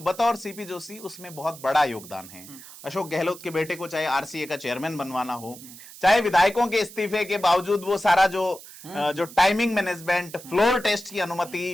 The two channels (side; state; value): right; noise; hiss, 17 dB below the sound